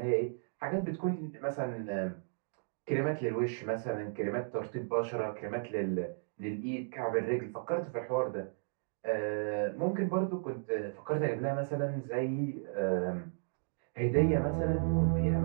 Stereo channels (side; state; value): left; silent; digital silence